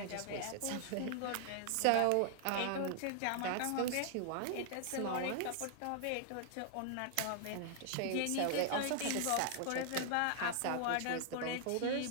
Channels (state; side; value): different; both; correlation -0.01